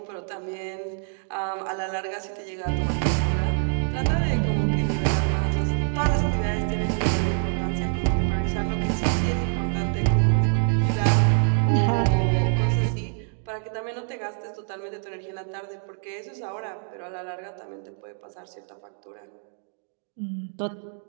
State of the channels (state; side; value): silent; left; 61 dB below the other